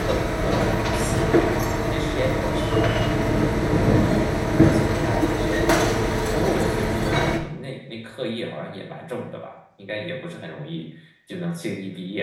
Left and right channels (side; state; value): both; identical; correlation 1.00